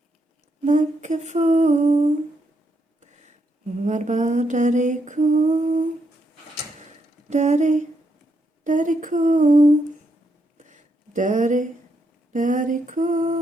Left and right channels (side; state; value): both; normal; correlation 0.79